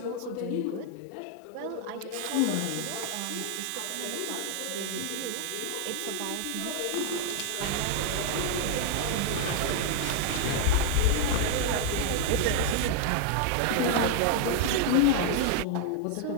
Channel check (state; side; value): different; both; correlation 0.00